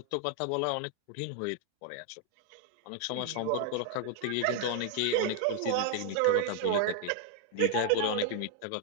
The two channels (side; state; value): both; different; correlation 0.00